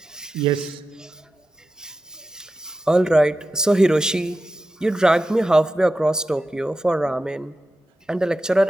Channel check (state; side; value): normal; both; correlation 0.91